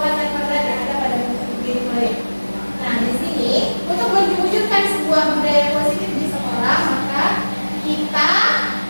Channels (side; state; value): both; inverted; correlation -1.00